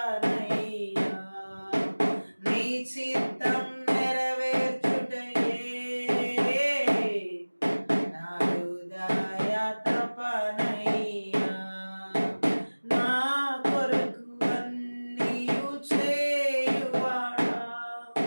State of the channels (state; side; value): inverted; both; correlation -1.00